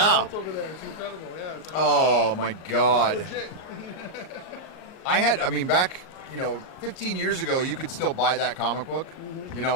It's over there. It's incredible. Yeah. It's like, Oh my God. legit. Back 15 years ago, you could still buy that comic book.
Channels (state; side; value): late; right; 38 ms